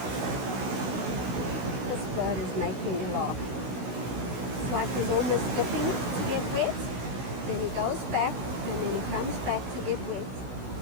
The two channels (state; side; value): late; left; 16 ms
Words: This bird is making me laugh. It's like he's almost dipping to get wet. Then he goes back, and then he comes back to get wet.